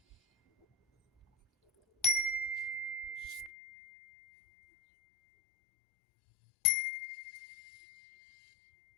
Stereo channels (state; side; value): drops out; right; at 3.5 s